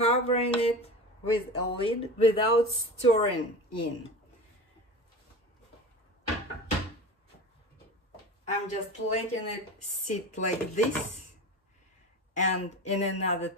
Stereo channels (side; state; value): both; normal; correlation 0.31